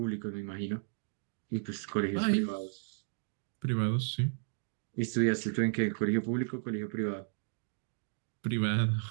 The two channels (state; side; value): silent; left; digital silence